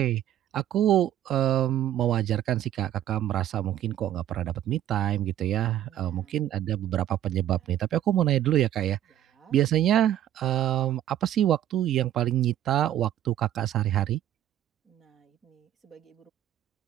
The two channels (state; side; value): quieter; left; 11.8 dB